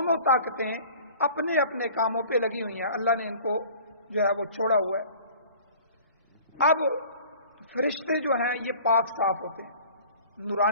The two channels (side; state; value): both; inverted; correlation -0.47